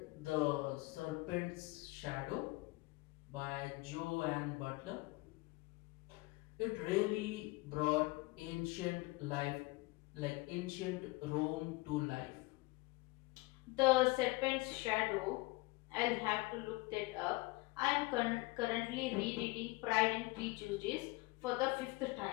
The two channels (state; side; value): quieter; right; 23.0 dB